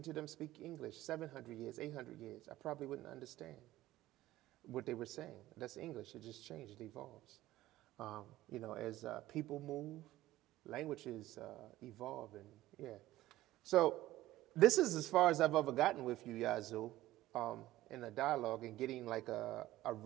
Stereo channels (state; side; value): quieter; left; 15.7 dB